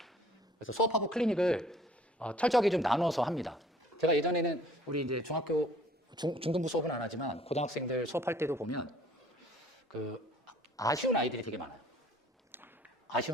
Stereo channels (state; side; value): normal; both; correlation 0.55